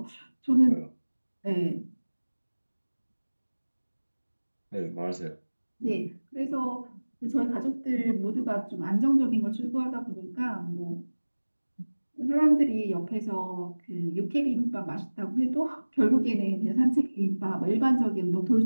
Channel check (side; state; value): both; inverted; correlation -1.00